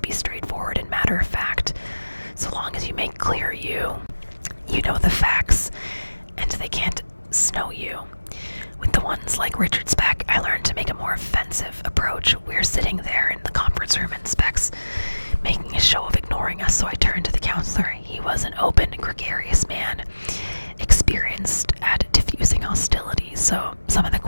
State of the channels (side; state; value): both; inverted; correlation -1.00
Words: be straightforward and matter of fact. So long as you make clear you know the facts, and they can't snow you. With the ones like Richard Speck, I learned to make a more offensive approach. We're sitting there in the conference room and Speck's making a show of ignoring us, so I turned to the counselor. He was an open, gregarious man, experienced at diffusing hostilities, so some of the